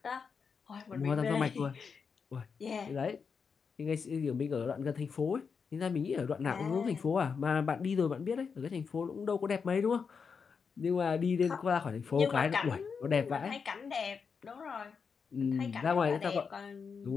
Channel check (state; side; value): quieter; right; 5.8 dB